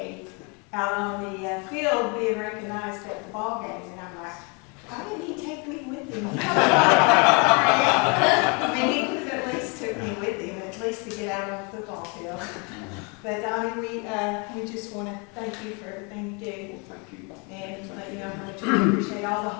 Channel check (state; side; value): quieter; right; 32.8 dB